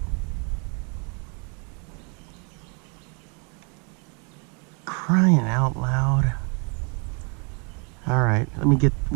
Crying out loud. All right, let me get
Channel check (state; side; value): quieter; left; 35.6 dB